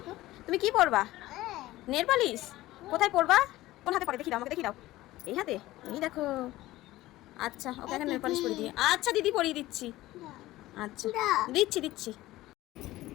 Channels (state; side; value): quieter; right; 17.0 dB